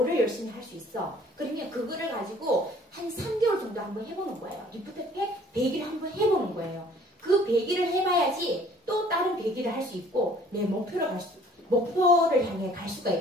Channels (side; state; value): both; normal; correlation 0.55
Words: 열심히 할 수 있어. 그러면 그거를 가지고 한 3개월 정도 한번 해보는 거예요. 리프트 팩 100일 한번 해보는 거예요. 그 100일을 해봐야지 또 다른 100일을 할 수 있고 내 목표를 향해 갈 수가